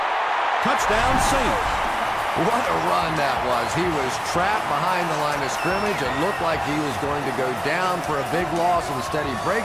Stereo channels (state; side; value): identical; both; correlation 1.00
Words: Touchdown, Saints. What a run that was. He was trapped behind the line of scrimmage. It looked like he was going to go down for a big loss. Instead, he